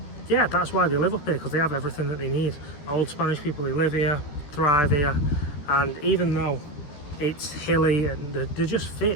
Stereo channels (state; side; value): late; right; 13 ms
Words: yeah, that's why they live up here, because they have everything that they need. Old Spanish people, they live here, thrive here, and even though it's hilly and they're just fit